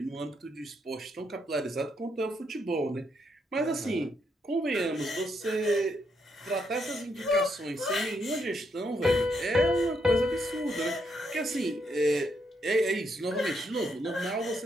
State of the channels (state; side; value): normal; both; correlation 0.77